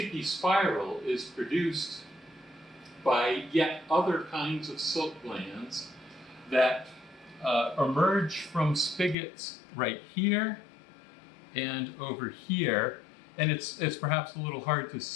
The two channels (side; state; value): right; drops out; at 9.2 s